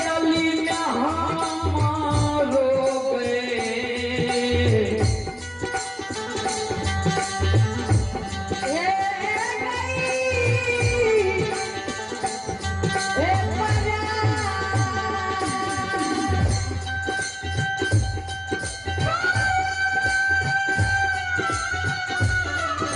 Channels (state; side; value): identical; both; correlation 1.00